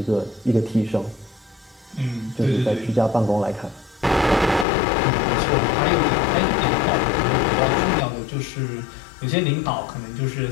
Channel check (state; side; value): drops out; right; at 4.7 s